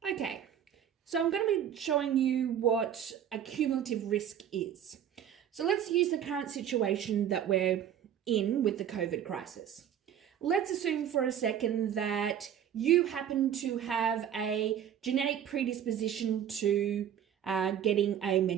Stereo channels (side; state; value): left; quieter; 9.5 dB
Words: Okay, so I'm going to be showing you what a cumulative risk is. So let's use the current situation that we're in with the COVID crisis. Let's assume for a second that you happen to have a genetic predisposition to getting a